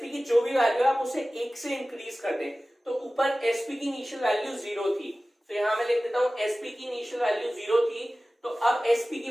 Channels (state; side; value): normal; both; correlation 0.97